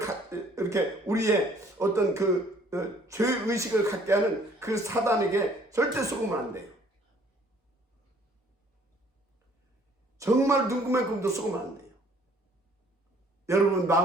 이렇게 우리의 어떤 그 죄의식을 갖게 하는 그 사단에게 절대 속으면 안 돼요. 정말 눈구멍만큼도 속으면 안 돼요. 여러분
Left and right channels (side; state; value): both; normal; correlation 0.58